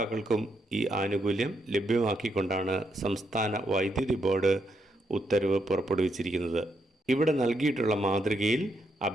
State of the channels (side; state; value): both; normal; correlation 0.78